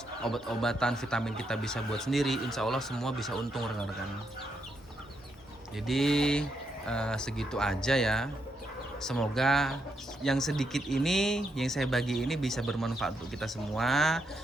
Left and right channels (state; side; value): normal; both; correlation 0.80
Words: obat-obatan, vitamin kita bisa buat sendiri, insya Allah semua bisa untung rekan-rekan. Jadi segitu aja ya. Semoga yang sedikit ini yang saya bagi ini bisa bermanfaat untuk kita semua.